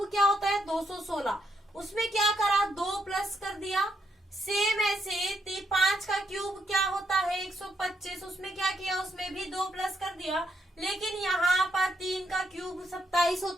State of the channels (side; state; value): both; normal; correlation 0.78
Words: क्या होता है 216। उसमें क्या करा, 2 प्लस कर दिया। सेम ऐसे 5 का क्यूब क्या होता है 125। उसमें क्या किया, उसमें भी 2 प्लस कर दिया। लेकिन यहाँ पर 3 का क्यूब 27